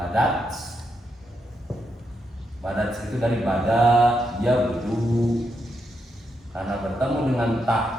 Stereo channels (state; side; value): normal; both; correlation 0.82